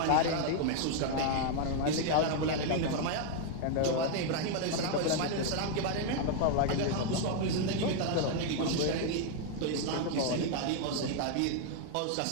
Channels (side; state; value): both; different; correlation 0.00